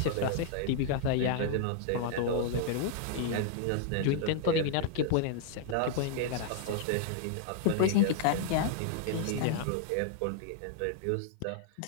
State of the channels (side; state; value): both; different; correlation -0.01